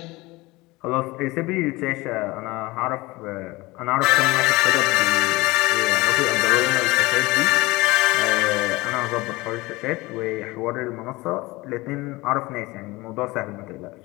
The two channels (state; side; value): quieter; right; 21.6 dB